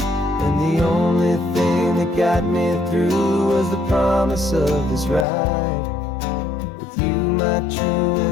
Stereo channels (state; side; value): drops out; right; at 5.2 s